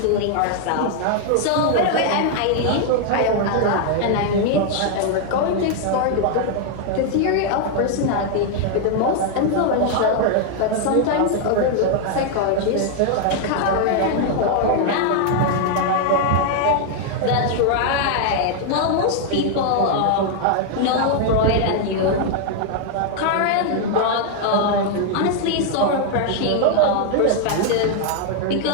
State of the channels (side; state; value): both; different; correlation 0.00